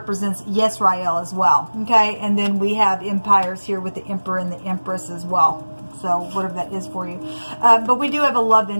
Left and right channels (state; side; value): inverted; both; correlation -1.00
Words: Yisrael as well. Okay, and then we have empires here with the emperor and the empress as well. So whatever that is for you. But we do have a love